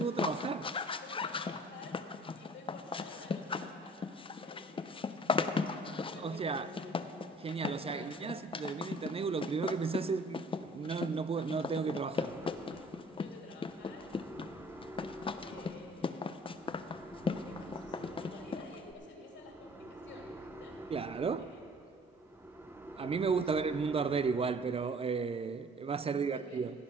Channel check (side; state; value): both; normal; correlation 0.51